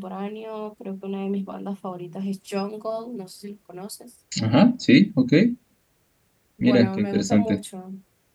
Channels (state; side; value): identical; both; correlation 1.00